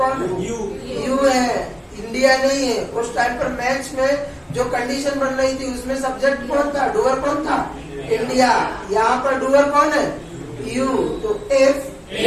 है? यू है, इंडिया नहीं है। उस टाइम पर मैच में जो कंडीशन बन रही थी उसमें सब्जेक्ट कौन था? डूअर कौन था? इंडिया। यहाँ पर डूअर कौन है? यू। तो if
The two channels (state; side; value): identical; both; correlation 1.00